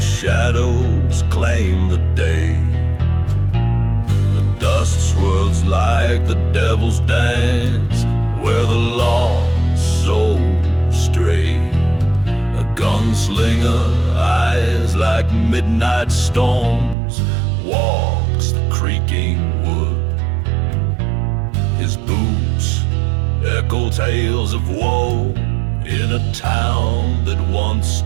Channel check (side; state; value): left; drops out; at 16.9 s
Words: claim the day. The dust swirls like the devil's dance, where the lost souls stray. A gunslinger, eyes like midnight storms, walks the creaking wood. His boots echo tales of woe in a town that once